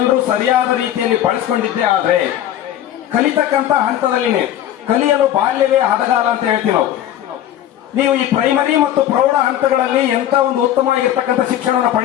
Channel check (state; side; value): quieter; right; 11.6 dB